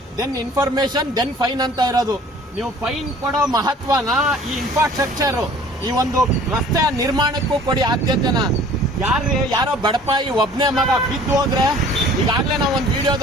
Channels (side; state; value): both; normal; correlation 0.50